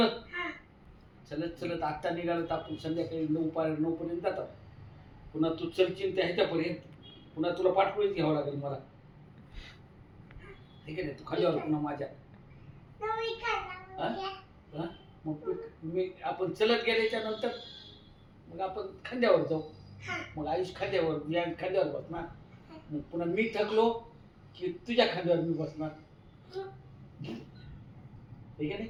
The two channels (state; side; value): identical; both; correlation 1.00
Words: चलत चलत आत्ता निघालं तर आपण संध्याकाळी 9 पर्यंत जातात. पुन्हा तू चलशील त्या ह्याच्यापर्यंत पुन्हा तुला पाठवळीच घ्यावं लागेल मला. ठीक आहे ना, तू खालीवर पुन्हा माझ्या. हा? मग मी आपण चलत गेल्याच्या नंतर मग आपण खांद्यावर जाऊ. मग आयुष खांद्यावर, मी खांद्यावर बसणार. मग पुन्हा मी थकलो की तुझ्या खांद्यावर मी बसणार. ठीक आहे